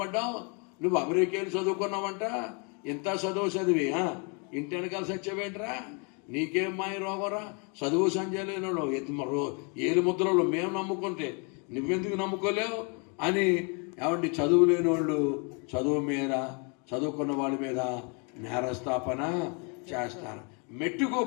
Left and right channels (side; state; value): right; quieter; 35.5 dB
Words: నువ్వు అమెరికాలు చదువుకున్నావంట, ఇంత చదివి ఇంటి వెనకాల సత్యమేంట్రా, నీకేం మాయ రోగరా, చదువు సంజయ్ లేనోళ్ళు ఏలు ముద్రలు మేము నమ్ముకుంటే నువ్వెందుకు నమ్ముకోలేవు అని ఏమండి చదువు లేనోళ్ళు చదువు మీద, చదువుకున్న వాళ్ళ మీద నేరస్థాపన చేస్తారు. మెట్టుకు